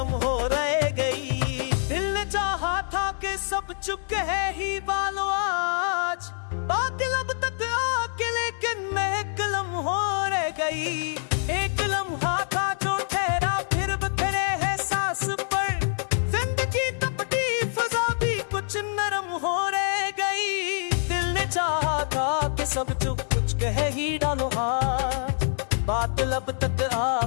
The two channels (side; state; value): right; silent; 61 dB below the other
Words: हो रह गई। दिल ने चाहा था कि सब चुप है ही बालो आज, बात लब तक आके लेकिन महकलम हो रह गई। एक लम्हा था जो ठहरा फिर बिखरे है सांस पर, जिंदगी तपती फजा भी कुछ नरम हो रह गई। दिल ने चाहा था कि सब चुप कुछ कह ही डालो आज, बात लब तक